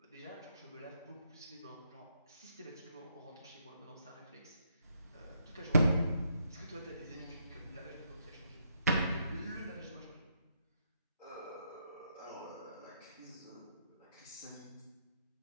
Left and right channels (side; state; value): both; inverted; correlation -0.76